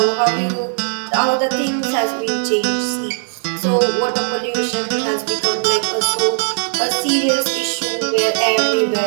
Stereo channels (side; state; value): left; silent; digital silence